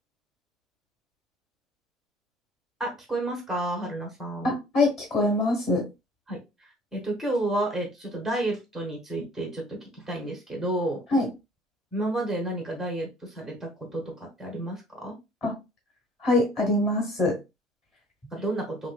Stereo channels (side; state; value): both; normal; correlation 0.54